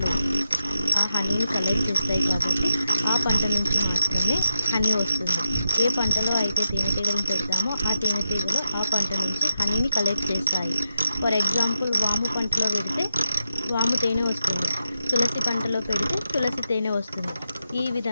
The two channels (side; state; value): both; inverted; correlation -0.86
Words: ఆ హనీని కలెక్ట్ చేస్తాయి కాబట్టి ఆ పంట నుంచి మాత్రమే హనీ వస్తుంది. ఏ పంటలో అయితే తేనెటీగలను పెడతామో ఆ తేనెటీగలు ఆ పంట నుంచి హనీని కలెక్ట్ చేస్తాయి. ఫర్ ఎగ్జాంపుల్, వాము పంటలో పెడితే వాము తేనె వస్తుంది. తులసి పంటలో పెడితే తులసి తేనె వస్తుంది. ఈ